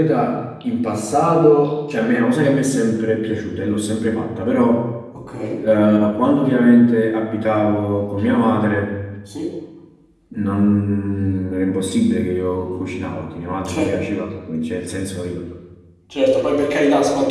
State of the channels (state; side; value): identical; both; correlation 1.00